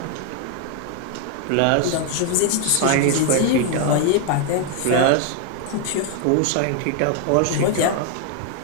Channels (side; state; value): both; different; correlation 0.00